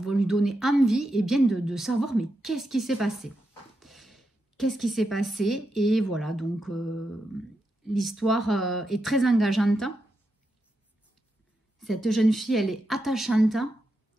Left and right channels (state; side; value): normal; both; correlation 0.86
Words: lui donner envie et bien de savoir, mais qu'est-ce qui s'est passé? Qu'est-ce qui s'est passé? Et voilà, donc l'histoire est très engageante. Cette jeune fille, elle est attachante,